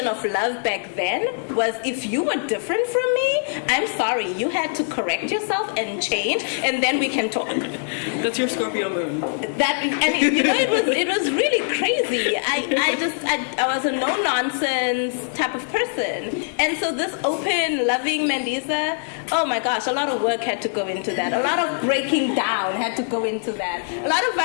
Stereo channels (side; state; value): right; silent; digital silence